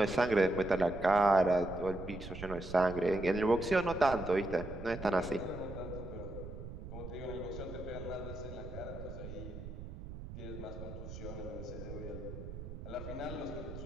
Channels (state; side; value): noise; right; rumble, 10 dB below the sound